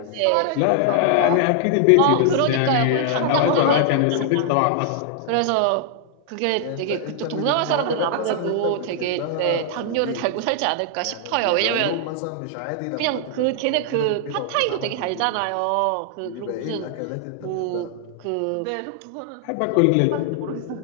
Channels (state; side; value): different; both; correlation -0.01